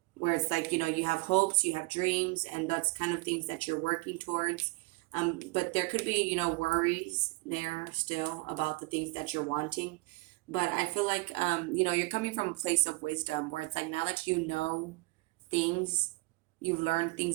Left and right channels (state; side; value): quieter; left; 24.2 dB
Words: Where it's like, you have hopes, you have dreams, and that's kind of things that you're working towards. But there could be, worries there still about the things that you're wanting. But I feel like, you're coming from a place of wisdom where it's like now that you know things, you've learned